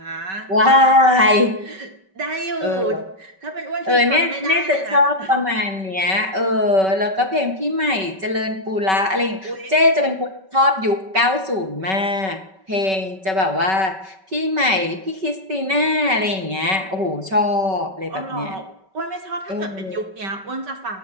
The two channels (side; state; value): left; late; 5.2 ms